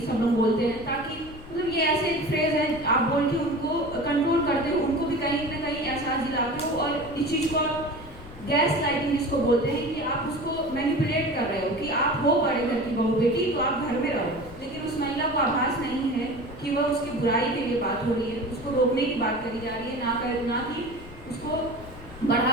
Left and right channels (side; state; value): left; noise; rumble, 17 dB below the sound